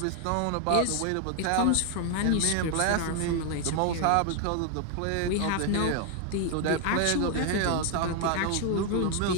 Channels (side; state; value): both; different; correlation 0.00